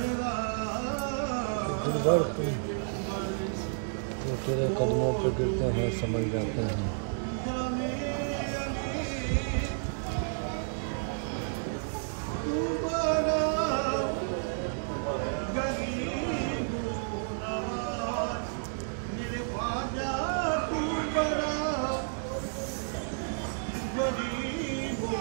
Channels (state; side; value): silent; left; 57 dB below the other